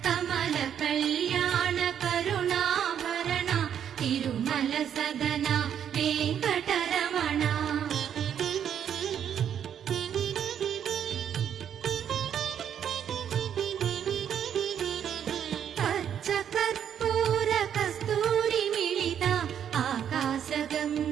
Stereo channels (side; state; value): left; quieter; 9.0 dB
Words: కమల కళ్యాణ కరుణాభరణ తిరుమల సదన వెంకటరమణ పచ్చ కర్పూర కస్తూరి మిళిత ఆకాశ